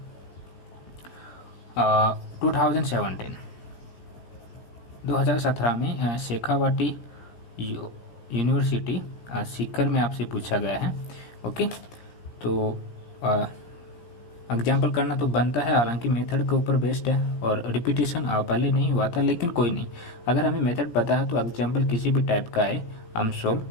2017 में शेखावाटी यूनिवर्सिटी सीकर में आपसे पूछा गया है। ओके, तो एग्जाम्पल करना तो बनता है, हालांकि मेथड के ऊपर बेस्ड है और रिपीटेशन पहले नहीं हुआ था, लेकिन कोई नहीं, अगर हमें मेथड पता है तो एग्जाम्पल किसी भी टाइप का है हम सोल्व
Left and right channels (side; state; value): right; late; 17 ms